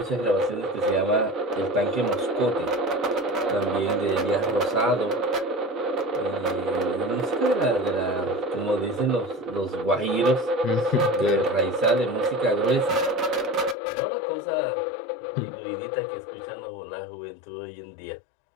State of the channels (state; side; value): drops out; right; at 13.8 s